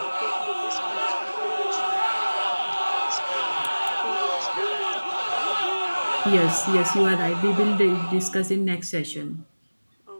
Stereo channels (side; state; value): both; inverted; correlation -1.00